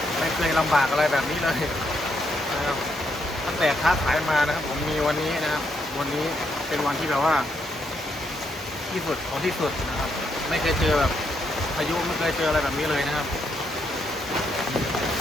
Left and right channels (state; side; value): normal; both; correlation 0.77